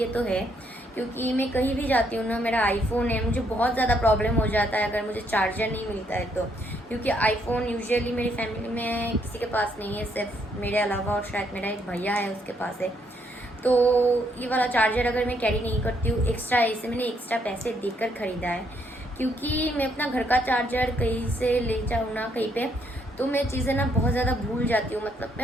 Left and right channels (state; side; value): normal; both; correlation 0.73